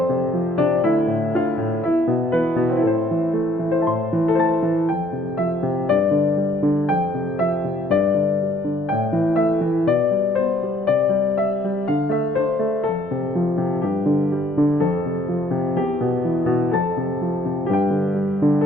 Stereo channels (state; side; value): normal; both; correlation 0.64